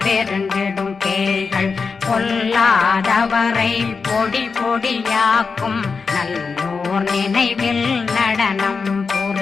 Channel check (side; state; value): right; quieter; 5.0 dB